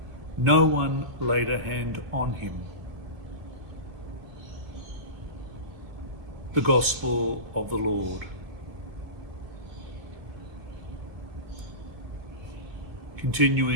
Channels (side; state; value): left; late; 2.4 ms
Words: no one laid a hand on him. The Gospel of the Lord.